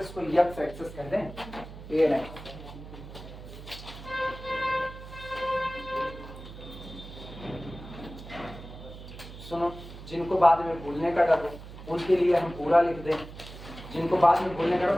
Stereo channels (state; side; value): noise; right; hum, 14 dB below the sound